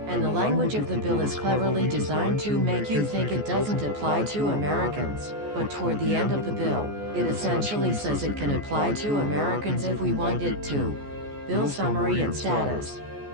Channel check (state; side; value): late; left; 14 ms